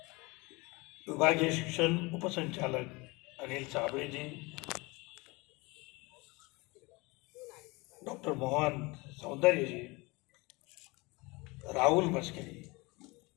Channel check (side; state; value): right; quieter; 24.9 dB